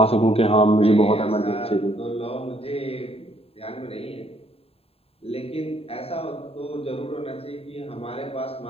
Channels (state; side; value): late; right; 0.28 ms